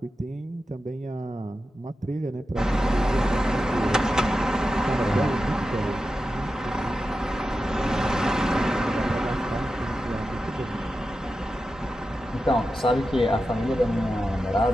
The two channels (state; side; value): normal; both; correlation 0.91